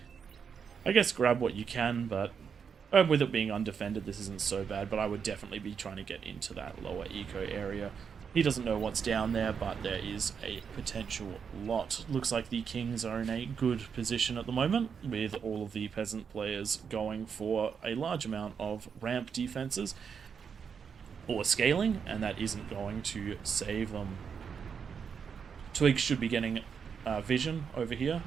I guess grab what you can, but with it being undefended, this isn't so bad, but I would definitely be trying to get into that lower eco area. He doesn't know what's down there, but there is a potential lot. Looks like the Kings are in a good position at the moment, with all of the Peasant players going for a large amount of ramp defenses or scaling, and that isn't going to save them. Twig should be getting vision over here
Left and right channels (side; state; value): left; quieter; 6.6 dB